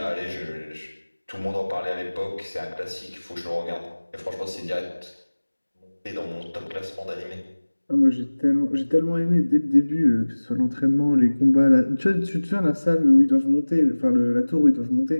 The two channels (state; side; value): inverted; both; correlation -1.00